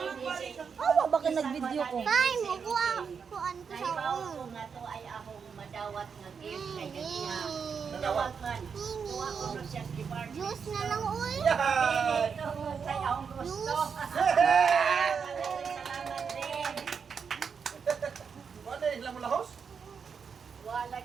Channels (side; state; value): left; quieter; 6.2 dB